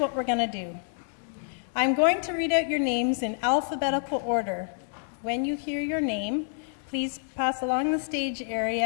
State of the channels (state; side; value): silent; right; digital silence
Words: we're going to do. I'm going to read out your names in alphabetical order. When you hear your name, please pass along the stage